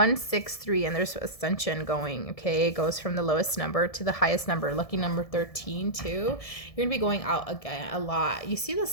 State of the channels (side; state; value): right; late; 1.7 ms